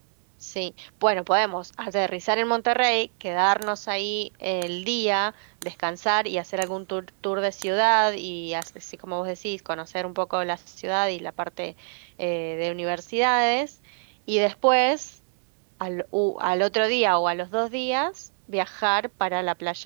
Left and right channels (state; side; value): silent; left; digital silence